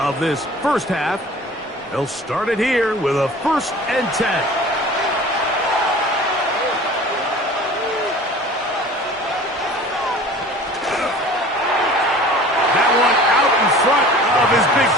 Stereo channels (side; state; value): both; normal; correlation 0.44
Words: this 1st half. They'll start it here with a 1st and 10. His big